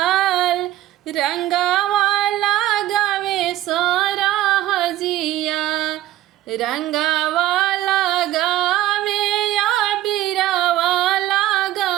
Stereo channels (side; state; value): left; quieter; 14.3 dB